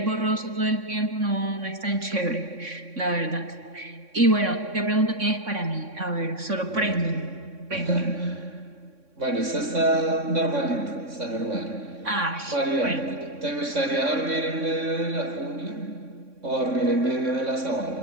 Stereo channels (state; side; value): late; left; 3.6 ms